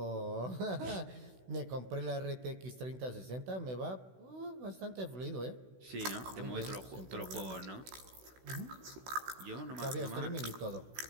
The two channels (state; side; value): late; left; 16 ms